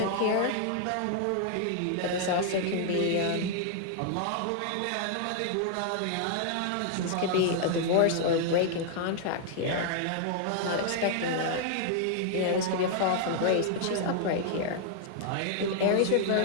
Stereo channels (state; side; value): different; both; correlation -0.01